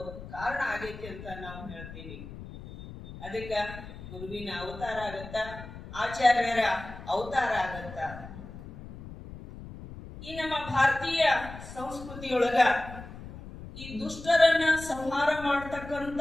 ಕಾರಣ ಆಗೈತಿ ಅಂತ ನಾವು ಹೇಳ್ತೀವಿ. ಅದಕ್ಕೆ ಗುರುವಿನ ಅವತಾರ ಆಗತ್ತ, ಆಚಾರ್ಯರ ಅವತಾರ ಆಗತ್ತ. ಈ ನಮ್ಮ ಭಾರತೀಯ ಸಂಸ್ಕೃತಿಯೊಳಗ ಈ ದುಷ್ಟರನ್ನ ಸಂಹಾರ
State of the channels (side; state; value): left; noise; rumble, 13 dB below the sound